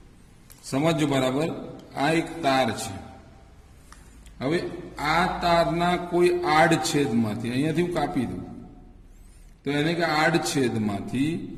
સમજો બરાબર. આ એક તાર છે. હવે આ તારના કોઈ આડછેદમાંથી, અહીંયાથી હું કાપી દઉં તો એને કે આડછેદમાંથી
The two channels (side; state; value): both; identical; correlation 1.00